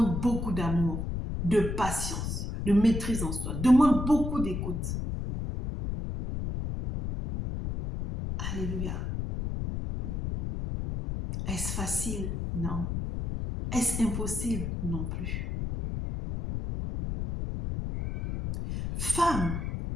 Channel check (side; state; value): left; noise; rumble, 3 dB below the sound